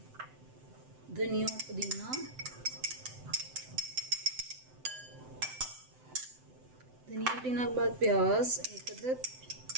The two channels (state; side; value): late; left; 7.8 ms